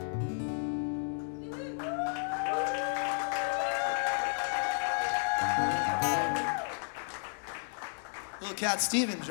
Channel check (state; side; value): silent; right; 56 dB below the other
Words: Little Cat Stevens,